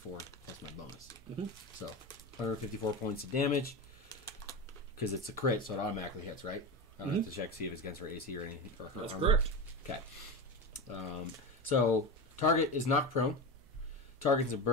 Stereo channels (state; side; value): noise; right; hum, 26 dB below the sound